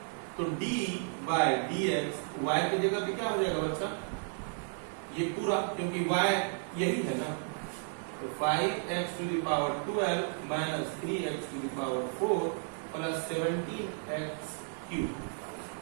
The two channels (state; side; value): silent; left; 56 dB below the other